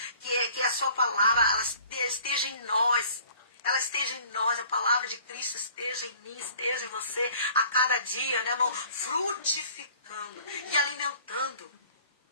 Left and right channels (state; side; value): inverted; both; correlation -0.51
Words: que a sua palavra ela esteja em nós. Ela esteja em nós, a palavra de Cristo esteja em mim, esteja em você, a cada dia, né, irmão? Frutificando e alimentando.